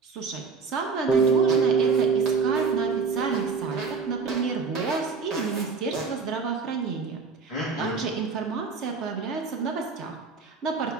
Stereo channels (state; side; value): quieter; left; 4.9 dB